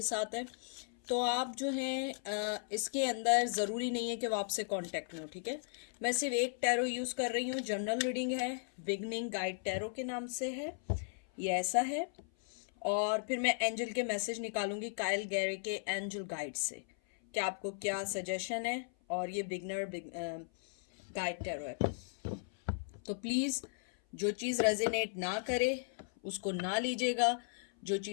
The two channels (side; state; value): right; silent; 54 dB below the other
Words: साथ है। तो आप जो हैं इसके अंदर ज़रूरी नहीं है कि वो आपसे कांटेक्ट में हो, ठीक है। मैं सिर्फ एक टैरो यूज़ कर रही हूँ, जनरल रीडिंग है, बिगनिंग गाइड टैरो के नाम से है, ये ऐसा है। और फिर मैं एंजल के मैसेज निकालूंगी काइल गैरे के एंजल गाइड से कि आपको क्या सजेशन है। और ये बिगनर गाइड टैरो है, तो प्लीज़ जो चीज़ रेजिनेट ना करे उसको ना लीजिएगा, जो